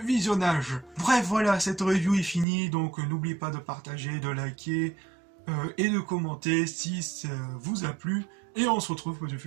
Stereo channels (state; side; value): drops out; left; at 2.5 s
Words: visionnage. Bref, voilà, cette review est finie, donc n'oubliez pas de partager, de liker et de commenter si ça vous a plu. Et on se retrouve pour de